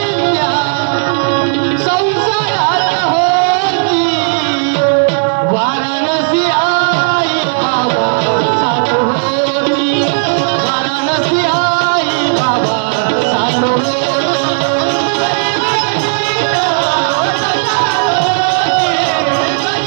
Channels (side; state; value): left; silent; digital silence